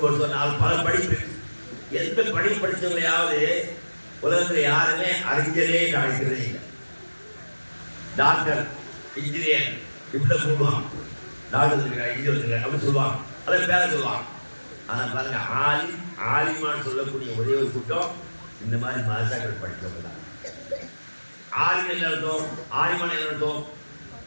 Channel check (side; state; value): both; inverted; correlation -1.00